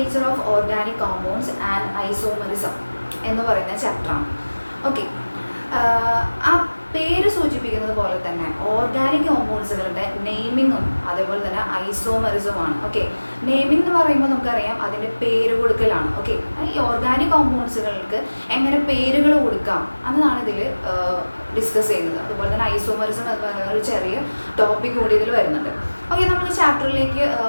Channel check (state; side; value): inverted; both; correlation -1.00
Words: of organic compounds and isomerism എന്ന് പറയുന്ന ചാപ്റ്ററാണ്. ഓക്കെ, ആ പേര് സൂചിപ്പിക്കുന്നത് പോലെ തന്നെ ഓർഗാനിക് കോമ്പൗണ്ട്സുകളുടെ നെയിമിങ്ങും അതേപോലെ തന്നെ ഐസോമറിസമാണ്. ഓക്കെ, നെയിമിംഗ് എന്ന് പറയുമ്പോൾ നമുക്കറിയാം അതിൻ്റെ പേര് കൊടുക്കലാണ്. ഓക്കെ, ഈ ഓർഗാനിക് കോമ്പൗണ്ട്സുകൾക്ക് എങ്ങനെ പേരുകൾ കൊടുക്കാം എന്നതാണ് ഇതിൽ ഡിസ്കസ് ചെയ്യുന്നത്. അതുപോലെ തന്നെ ഐസോമറിസം എന്ന് പറയുന്ന ഒരു ചെറിയ ടോപ്പിക് കൂടി ഇതിൽ വരുന്നുണ്ട്. ഓക്കെ, നമ്മൾ ചാപ്റ്ററിലേക്ക്